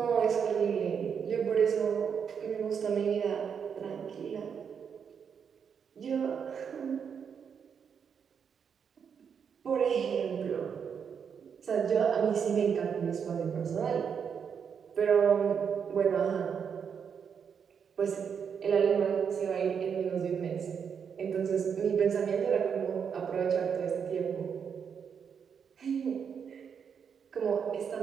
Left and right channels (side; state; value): left; quieter; 7.0 dB